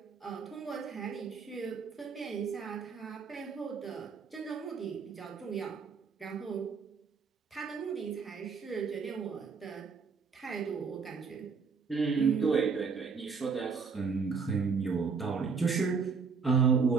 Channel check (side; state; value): left; quieter; 5.4 dB